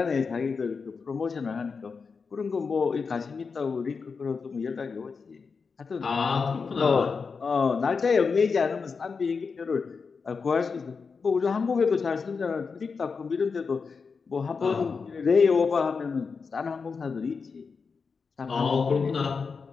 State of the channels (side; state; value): right; quieter; 5.1 dB